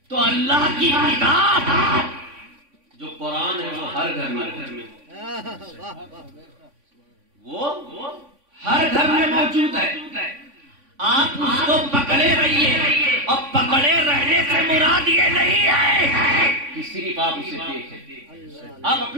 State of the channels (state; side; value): late; left; 3.5 ms